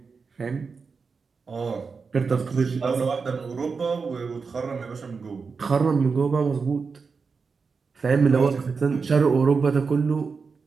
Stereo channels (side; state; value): left; quieter; 5.0 dB